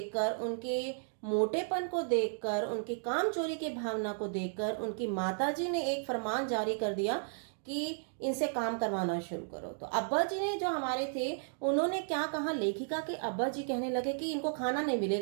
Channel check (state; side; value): silent; left; digital silence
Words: उनके मोटेपन को देखकर, उनकी काम चोरी की भावना को देखकर उनकी माताजी ने एक फरमान जारी कर दिया कि इनसे काम करवाना शुरू करो। तो अब्बा जी ने जो हमारे थे उन्होंने क्या कहा, लेखिका के अब्बा जी कहने लगे कि इनको खाना नहीं